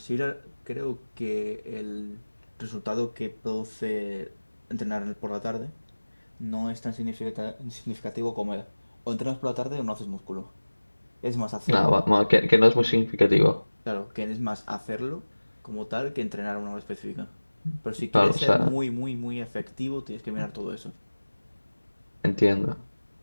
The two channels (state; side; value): inverted; both; correlation -1.00